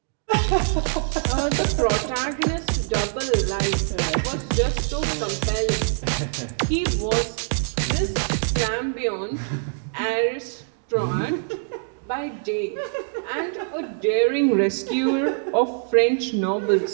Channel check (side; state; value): left; silent; digital silence